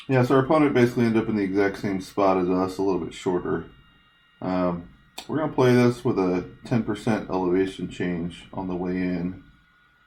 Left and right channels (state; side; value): identical; both; correlation 1.00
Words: Yeah, so our opponent basically ended up in the exact same spot as us, a little bit shorter. We're going to play this with a 10% elevation change on the way in.